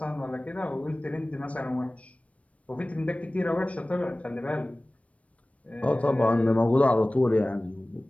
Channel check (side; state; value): right; late; 0.064 ms